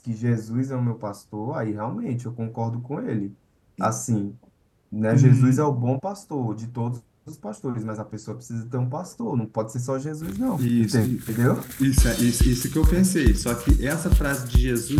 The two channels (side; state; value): both; identical; correlation 1.00